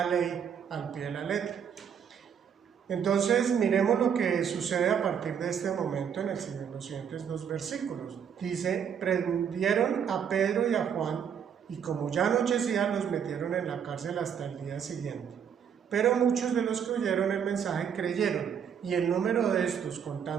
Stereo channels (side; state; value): left; quieter; 7.9 dB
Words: ley al pie de la letra. Entonces, miremos lo que sucede a partir de este momento en los siguientes 2 versículos. Dice, prendieron a Pedro y a Juan, y como ya anochecía, los metieron en la cárcel hasta el día siguiente. Pero muchos de los que oyeron el mensaje creyeron, y el número de estos,